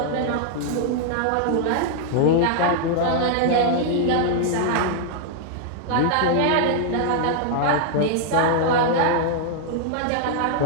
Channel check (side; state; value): both; different; correlation -0.01